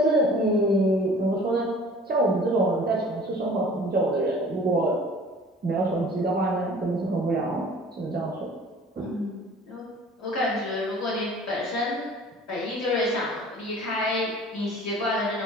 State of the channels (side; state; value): both; normal; correlation 0.48